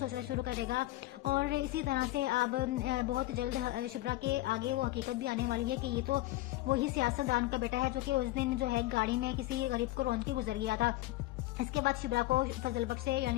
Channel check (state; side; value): quieter; right; 17.7 dB